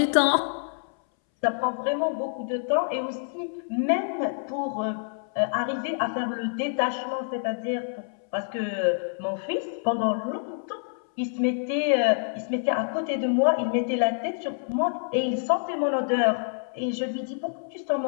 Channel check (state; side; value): silent; right; 60 dB below the other